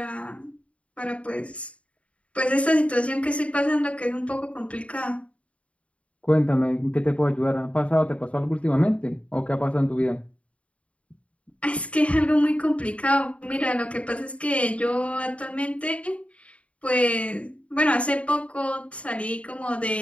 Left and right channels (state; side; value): late; right; 0.063 ms